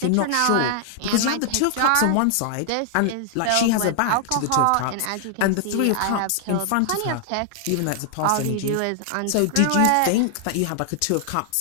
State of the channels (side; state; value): both; different; correlation 0.00